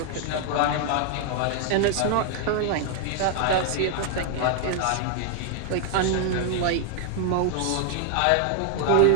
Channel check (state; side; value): different; both; correlation 0.00